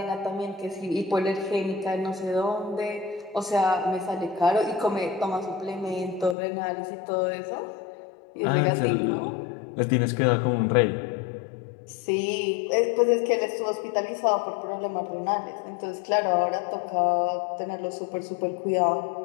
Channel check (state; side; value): drops out; right; at 6.4 s